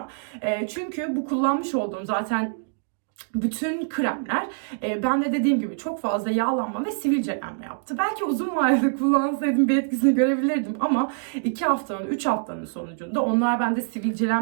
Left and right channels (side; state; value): left; silent; digital silence